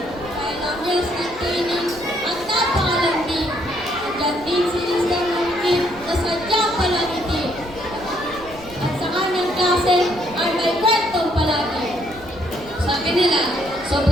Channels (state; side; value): noise; right; rumble, 19 dB below the sound